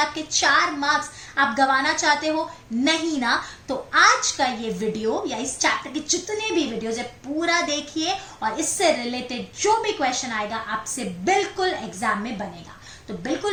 आपके 4 मार्क्स आप गंवाना चाहते हो? नहीं ना। तो आज का ये वीडियो या इस चैप्टर के जितने भी वीडियोज है पूरा देखिए और इससे रिलेटेड जो भी क्वेश्चन आएगा आपसे बिल्कुल एग्जाम में बनेगा। तो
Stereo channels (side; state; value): both; identical; correlation 1.00